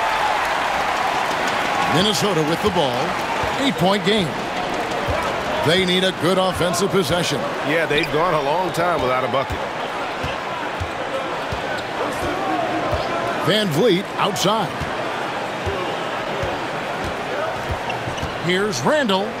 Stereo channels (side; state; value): both; identical; correlation 1.00